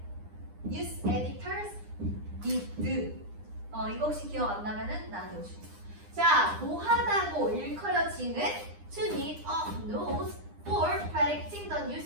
news editors did. 이거 혹시 기억 안 나면은 나한테 오시고. 자, 뭐하다고 일컬어지는 to need a nose for predicting the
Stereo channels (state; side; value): late; left; 9.8 ms